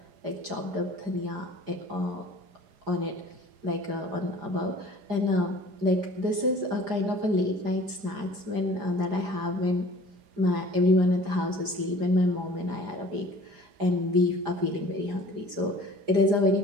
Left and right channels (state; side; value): late; left; 4.9 ms